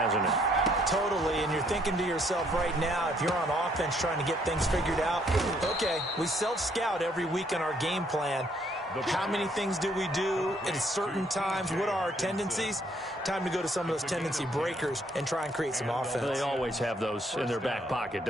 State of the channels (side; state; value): both; normal; correlation 0.68